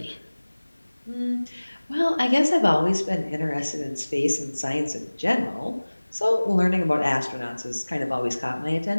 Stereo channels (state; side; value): inverted; both; correlation -1.00